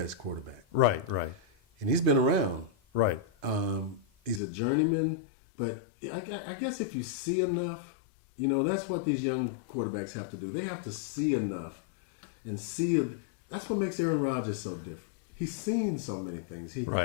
quarterback. Right. And he's been around. Right. He's a journeyman, but I guess if you see enough, that's what these young quarterbacks have to do. They have to see enough and see. That's what makes Aaron Rodgers so different. He's seen so many things.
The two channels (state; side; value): drops out; right; at 4.4 s